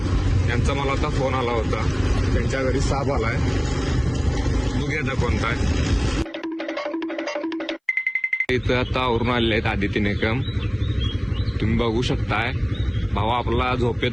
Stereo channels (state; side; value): identical; both; correlation 1.00